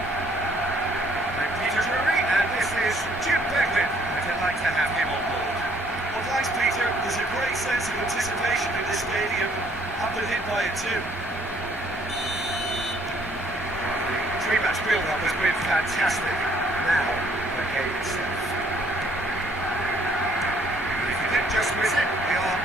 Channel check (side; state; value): left; noise; hum, 24 dB below the sound